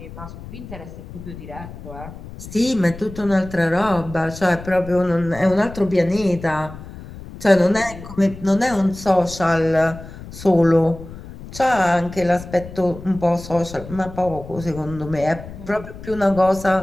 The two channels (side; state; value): left; noise; rumble, 14 dB below the sound